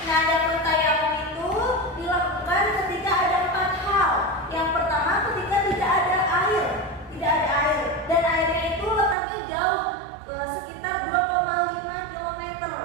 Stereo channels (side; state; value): left; drops out; at 9.2 s